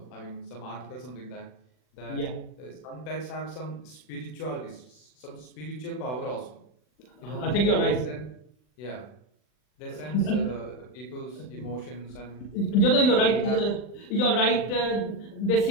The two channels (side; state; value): right; late; 40 ms